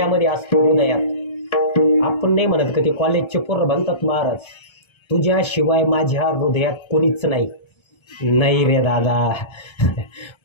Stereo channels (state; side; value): late; right; 1.3 ms